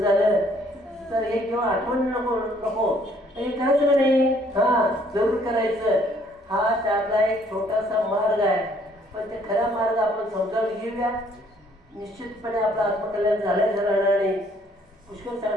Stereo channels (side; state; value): both; normal; correlation 0.63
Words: तर हे किंवा आठवण नको हे करायचं नाही. जरूर करायचं. हा त्यातला एक छोटासा मार्ग आहे. पण ते खरा मार्ग आपण समजावून घेऊया. निश्चितपणे आपलं आत्मकल्याण झाल्याचं राहणार नाही. पुष्कळ